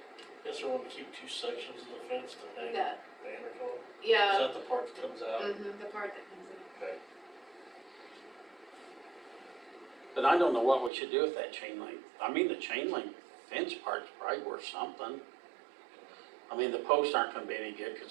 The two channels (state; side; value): drops out; left; at 10.9 s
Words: Guess we're gonna keep 2 sections of the fence to hang That, banners on. Is yeah, that the part that comes out? the part that comes in. Okay. But I don't know what we should do with that chain link. I mean, the chain link fence part's probably worth something. I mean, the posts aren't gonna be any good, cause